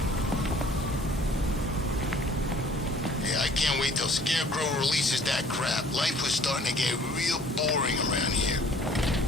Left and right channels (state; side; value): normal; both; correlation 0.55